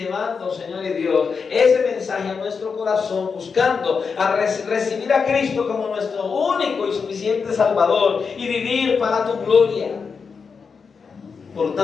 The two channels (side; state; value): right; quieter; 5.5 dB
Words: Señor y Dios, ese mensaje a nuestro corazón, buscando a recibir a Cristo como nuestro único y suficiente Salvador y vivir para tu gloria. Por